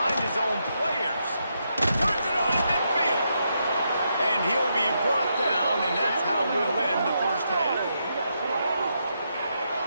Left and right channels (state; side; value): inverted; both; correlation -0.81